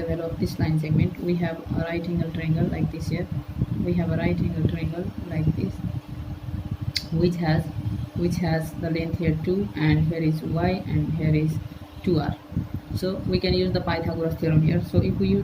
value of this line segment, we have a right angle triangle like this here. We have a right angle triangle like this. which has the length here 2, and here is y, and here is 2r. So we can use the Pythagoras theorem here. So if we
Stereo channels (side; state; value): both; identical; correlation 1.00